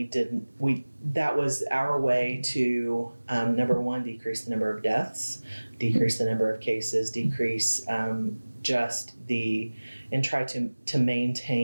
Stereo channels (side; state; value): both; inverted; correlation -1.00